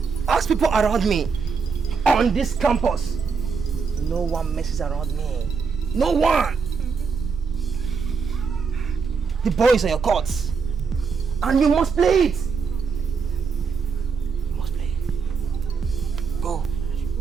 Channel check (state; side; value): quieter; left; 5.4 dB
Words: Ask people around me on this campus. No one messes around me. No one. The ball is on your court. And you must play it. You must play it. Go.